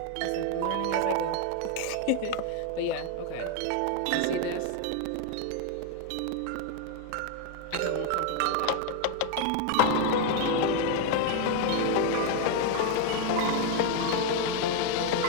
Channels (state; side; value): different; both; correlation 0.01